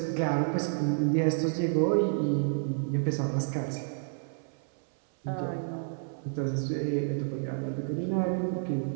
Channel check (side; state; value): left; silent; 58 dB below the other